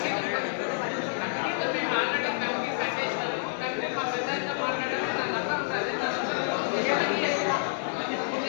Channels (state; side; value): silent; right; digital silence